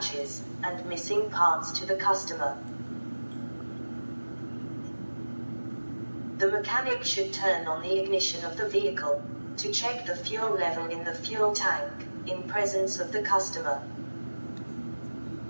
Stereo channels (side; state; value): both; inverted; correlation -1.00